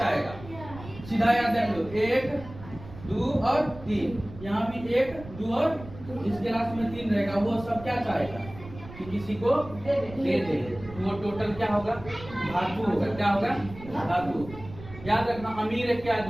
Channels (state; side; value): noise; right; rumble, 15 dB below the sound